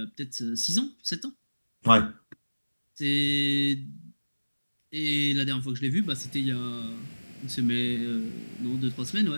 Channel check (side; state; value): both; inverted; correlation -1.00